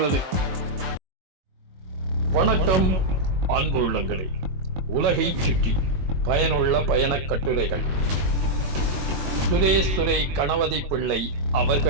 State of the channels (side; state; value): left; late; 22 ms